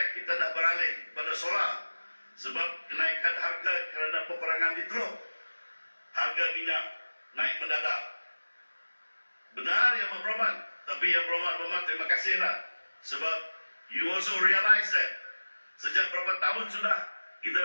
kita dah beralih pada solar sebab kenaikan harga kerana peperangan di Teluk, harga minyak naik mendadak. Benar Yang Berhormat, tapi Yang Berhormat terima kasihlah sebab you also realize that sejak berapa tahun sudah kita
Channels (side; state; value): both; inverted; correlation -1.00